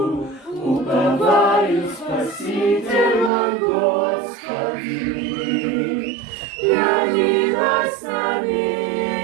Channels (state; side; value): drops out; left; at 3.3 s